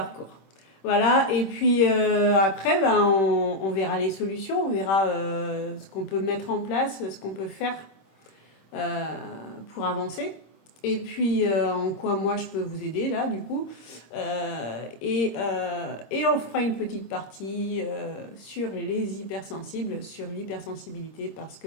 Voilà. Et puis, après, on verra les solutions. On verra ce qu'on peut mettre en place, ce qu'on peut faire pour avancer. Et puis, en quoi moi je peux vous aider, là, du coup. Et on fera une petite partie sur les hypersensibles, sur l'hypersensibilité, parce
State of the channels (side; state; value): right; late; 26 ms